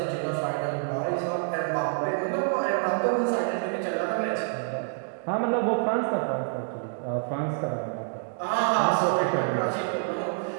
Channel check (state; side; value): silent; left; digital silence